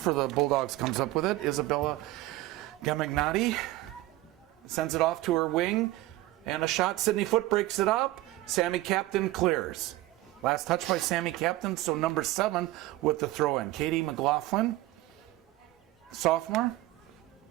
the Bulldogs comes up with it, Isabella Gamignani. Sends it off to her wing. And a shot, Sydney Foote breaks it up. Sammy Captain clears. Last touch by Sammy Captain, so number 7 with the throw-in. Katie McLaughlin, sophomore.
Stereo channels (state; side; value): quieter; left; 17.1 dB